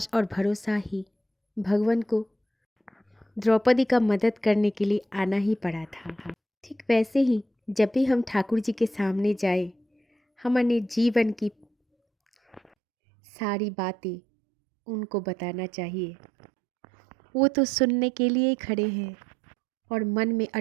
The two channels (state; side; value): drops out; left; at 12.7 s